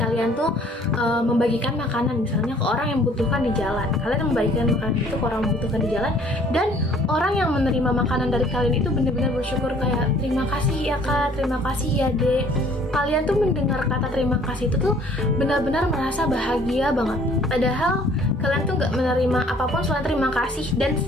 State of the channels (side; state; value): both; normal; correlation 0.57